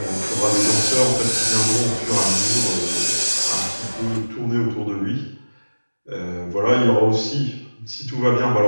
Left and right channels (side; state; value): both; inverted; correlation -1.00